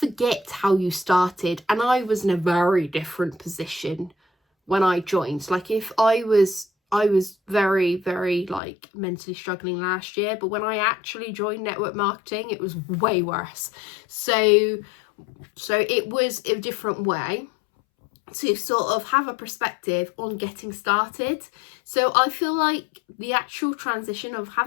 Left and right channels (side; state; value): right; drops out; at 8.6 s